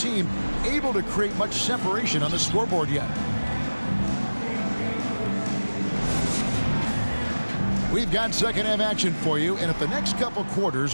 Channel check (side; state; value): both; inverted; correlation -1.00